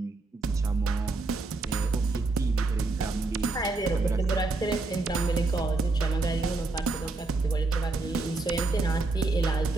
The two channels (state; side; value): quieter; left; 3.4 dB